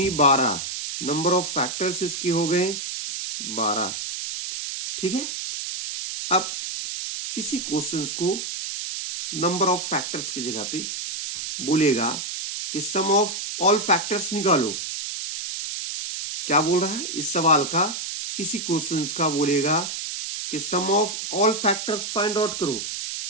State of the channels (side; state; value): right; noise; hiss, 5 dB below the sound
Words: 12। नंबर ऑफ फैक्टर्स इसके हो गए 12। ठीक है, अब इसी क्वेश्चंस को नंबर ऑफ फैक्टर्स की जगह पे बोलेगा कि सम ऑफ ऑल फैक्टर्स निकालो। क्या बोल रहा है इस सवाल का, इसी क्वेश्चंस का बोलेगा कि sum of all factors find out करो।